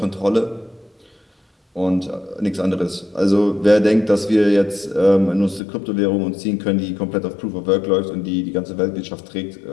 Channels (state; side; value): drops out; right; at 5.6 s